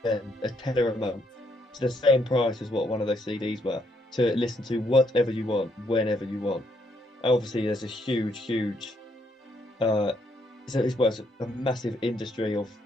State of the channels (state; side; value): normal; both; correlation 0.73